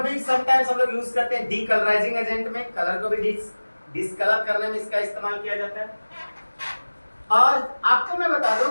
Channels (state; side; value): inverted; both; correlation -1.00